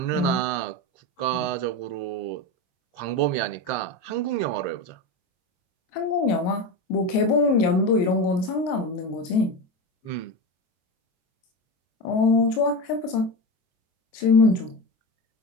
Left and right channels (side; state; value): right; late; 23 ms